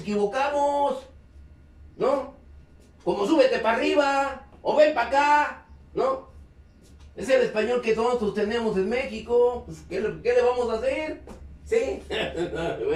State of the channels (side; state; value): both; identical; correlation 1.00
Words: ¿no? Como súbete para arriba, o ven para acá, ¿no? Es el español que nosotros tenemos en México. Pues, ¿qué le vamos a hacer? ¿Sí?